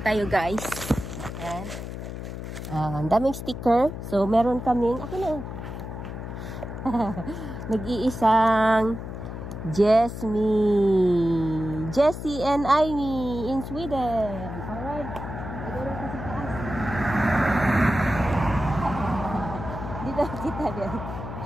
tayo guys. Ayan. Ang daming sticker. So meron kaming ako na. Nag-iisang Jessie and Amy in Sweden. Alright. Siguro kasi taas. Dito kita din.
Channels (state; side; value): noise; left; hum, 8 dB below the sound